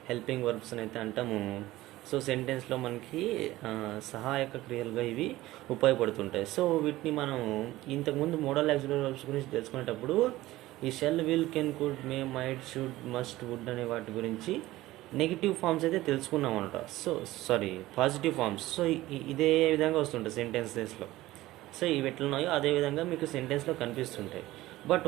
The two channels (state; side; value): quieter; left; 17.0 dB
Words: హెల్పింగ్ వర్బ్స్ అని అయితే అంటాము. సో సెంటెన్స్లో మనకి సహాయక క్రియలుగా ఇవి ఉపయోగపడుతుంటాయి. సో వీటిని మనం ఇంతకుముందు మోడల్ యాక్సిలరీ వర్బ్స్ గురించి తెలుసుకునేటప్పుడు ఈ shall, will, can, could, may, might, should, must, would అనే వాటి గురించి నెగిటివ్ ఫార్మ్స్ అయితే తెలుసుకున్నాం అనమాట. Positive forms. సో ఇదే విధంగా వస్తుంటాయి సెంటెన్సెస్లో. సో ఇవి ఎట్లున్నాయో అదే విధంగా మీకు సెంటెన్స్లో కనిపిస్తుంటాయి. బట్